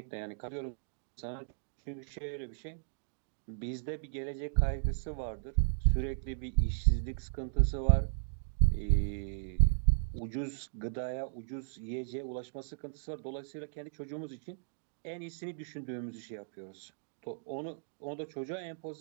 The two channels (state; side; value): silent; left; digital silence